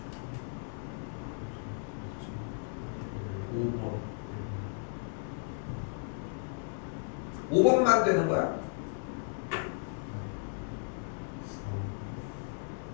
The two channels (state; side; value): silent; right; 55 dB below the other